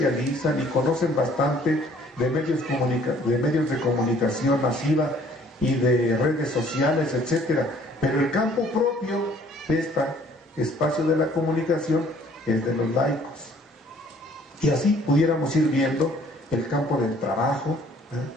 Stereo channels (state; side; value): normal; both; correlation 0.58